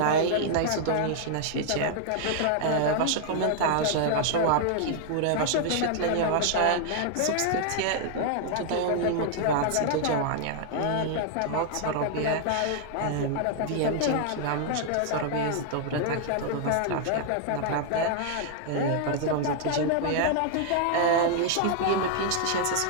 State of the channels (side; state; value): both; different; correlation -0.01